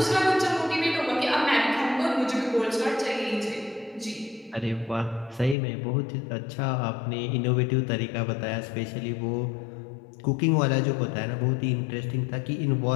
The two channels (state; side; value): drops out; right; at 5.6 s